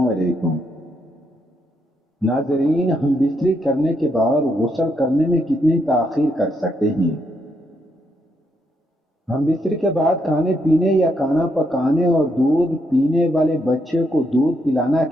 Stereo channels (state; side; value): normal; both; correlation 0.77